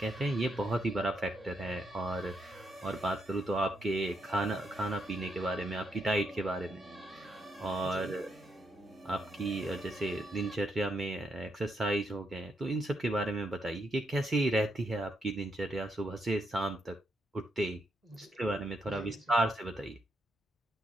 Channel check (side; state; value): both; normal; correlation 0.79